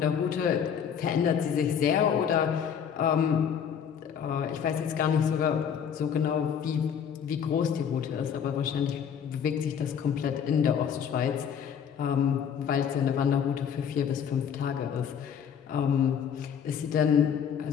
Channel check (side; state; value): right; quieter; 7.9 dB